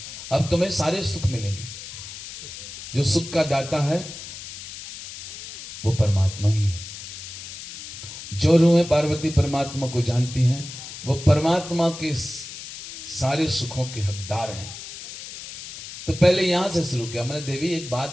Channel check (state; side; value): noise; left; hiss, 12 dB below the sound